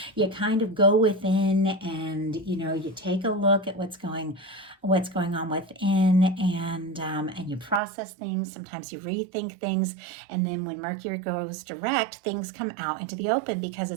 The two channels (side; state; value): left; drops out; at 7.8 s